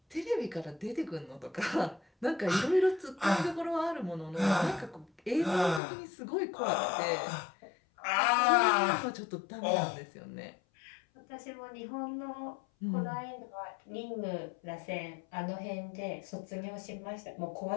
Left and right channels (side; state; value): right; drops out; at 5.8 s